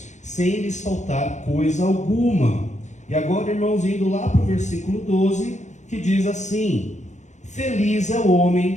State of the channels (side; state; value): right; late; 0.34 ms